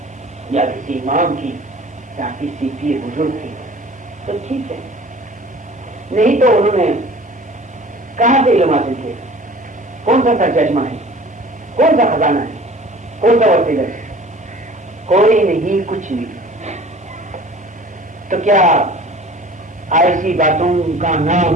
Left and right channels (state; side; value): normal; both; correlation 0.45